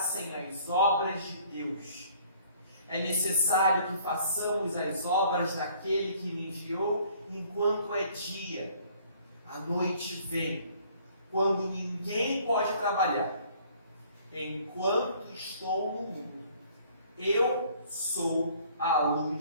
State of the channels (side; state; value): both; inverted; correlation -0.58